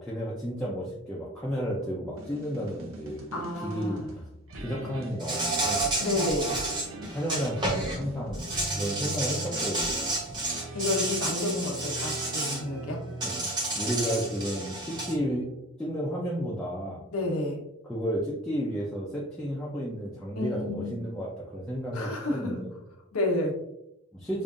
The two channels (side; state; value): both; normal; correlation 0.38